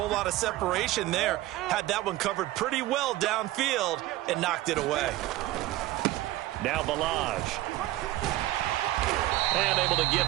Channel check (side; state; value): left; quieter; 16.5 dB